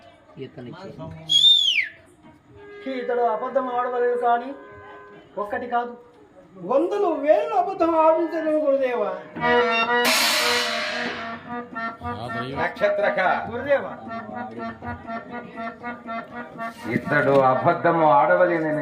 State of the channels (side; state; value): both; identical; correlation 1.00